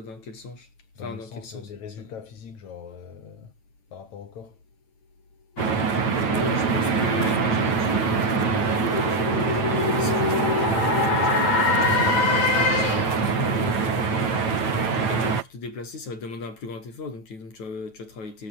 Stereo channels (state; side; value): late; right; 9.1 ms